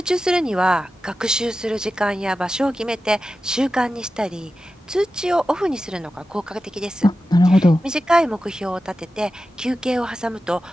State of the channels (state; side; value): normal; both; correlation 0.93